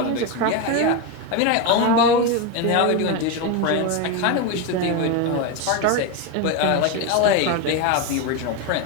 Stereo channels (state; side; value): different; both; correlation 0.03